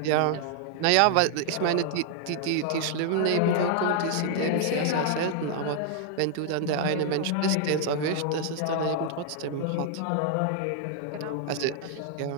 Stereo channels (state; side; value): different; both; correlation 0.00